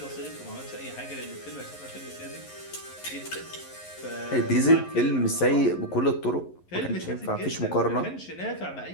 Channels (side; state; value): right; late; 11 ms